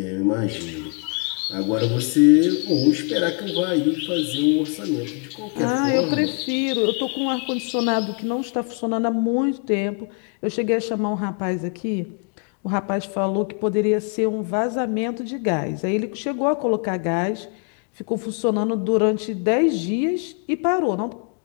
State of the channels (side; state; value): right; quieter; 37.8 dB